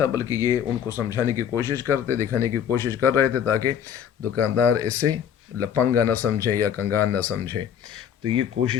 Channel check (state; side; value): quieter; right; 8.8 dB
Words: بلکہ یہ ان کو سمجھانے کی کوشش کرتے، دکھانے کی کوشش کر رہے تھے تاکہ دکاندار اسے لپنگا نہ سمجھے یا کنگان نہ سمجھے۔ تو یہ